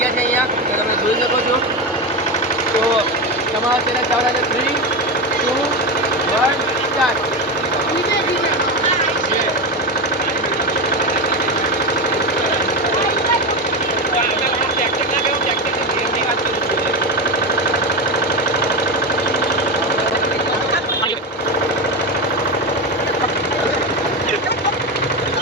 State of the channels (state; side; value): normal; both; correlation 0.17